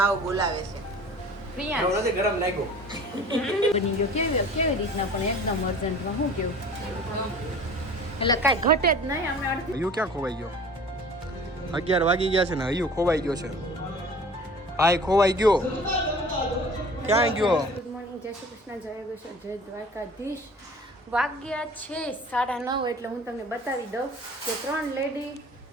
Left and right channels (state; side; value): normal; both; correlation 0.44